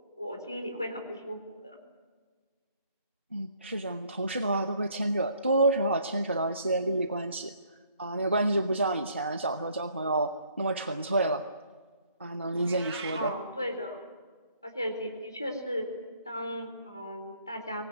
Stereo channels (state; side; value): inverted; both; correlation -0.64